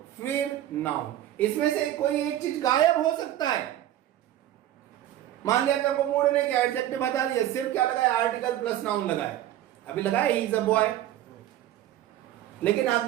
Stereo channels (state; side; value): quieter; left; 12.8 dB